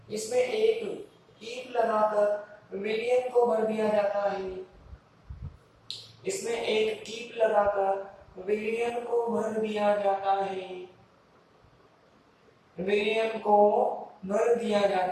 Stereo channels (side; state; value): both; identical; correlation 1.00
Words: इसमें एक कीप लगाकर विलयन को भर दिया जाता है, इसमें एक कीप लगाकर विलयन को भर दिया जाता है, विलयन को भर दिया